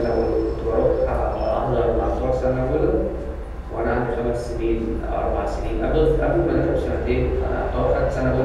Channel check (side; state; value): both; identical; correlation 1.00